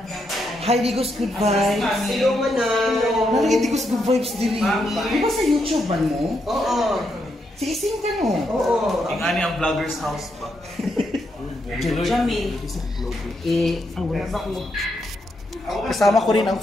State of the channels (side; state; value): both; normal; correlation 0.80